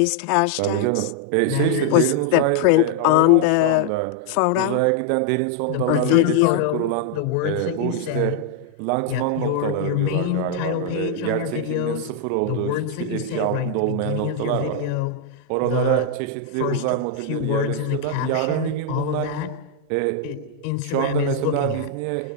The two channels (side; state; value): both; different; correlation 0.00